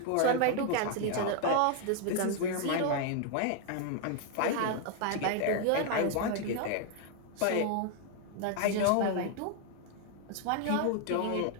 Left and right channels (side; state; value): both; different; correlation 0.00